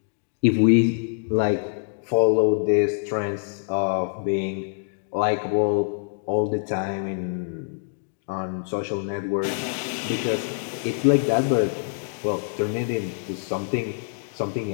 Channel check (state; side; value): silent; right; digital silence